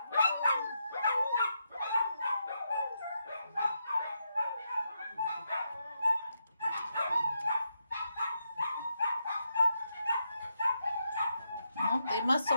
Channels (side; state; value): both; inverted; correlation -0.83